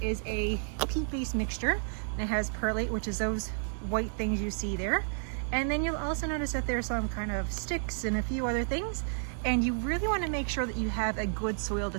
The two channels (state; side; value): silent; left; digital silence